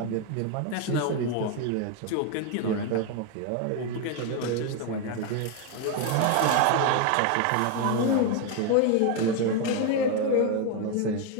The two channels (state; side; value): different; both; correlation 0.01